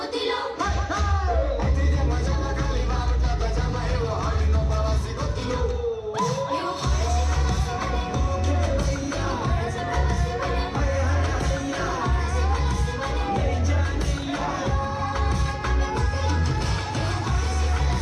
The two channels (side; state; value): both; identical; correlation 1.00